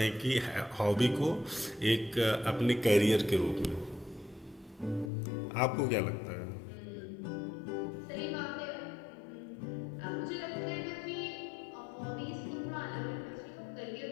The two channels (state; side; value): drops out; right; at 5.1 s